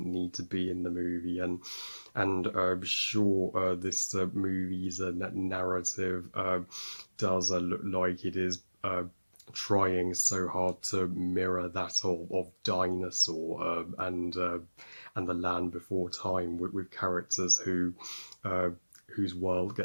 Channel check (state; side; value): inverted; both; correlation -1.00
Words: need to be in the movie, and sure, this movie's narrative does look like it is trying so hard to mirror that of Dinosaur and the Land Before Time with characters uh, whose world